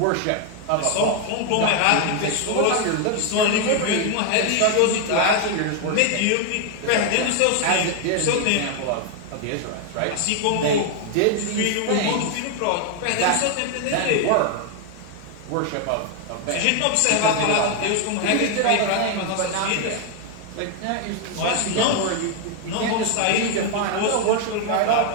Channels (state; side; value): different; both; correlation 0.01